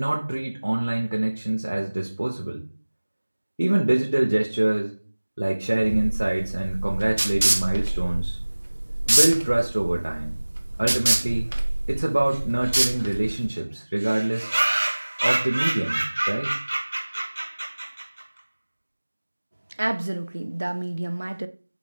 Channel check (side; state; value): both; inverted; correlation -1.00